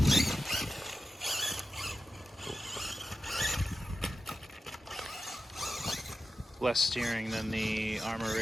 less steering than the Armor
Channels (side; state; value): both; normal; correlation 0.93